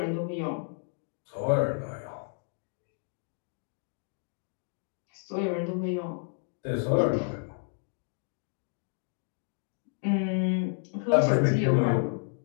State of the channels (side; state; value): right; silent; 57 dB below the other